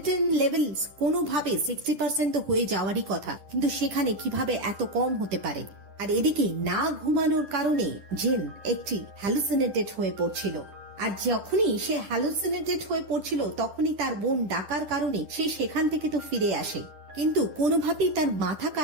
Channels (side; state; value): left; late; 10 ms